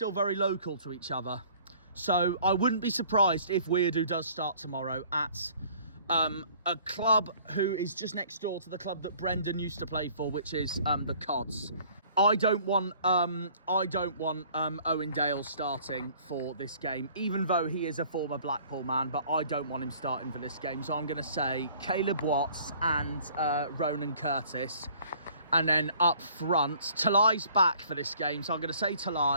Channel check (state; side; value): inverted; both; correlation -0.54